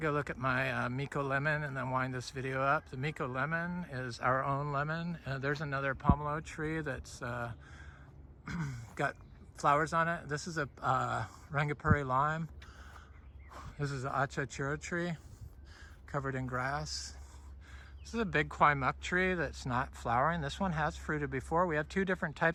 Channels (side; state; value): both; identical; correlation 1.00